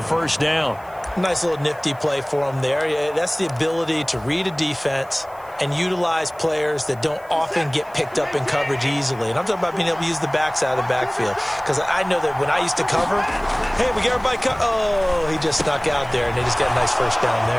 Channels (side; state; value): right; noise; hiss, 27 dB below the sound